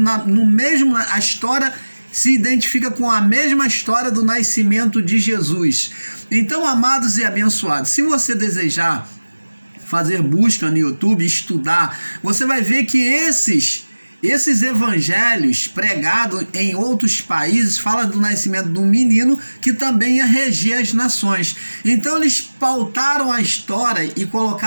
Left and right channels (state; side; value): inverted; both; correlation -1.00